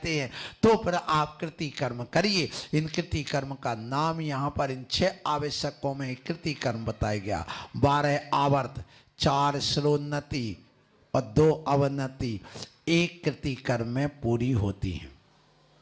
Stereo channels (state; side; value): identical; both; correlation 1.00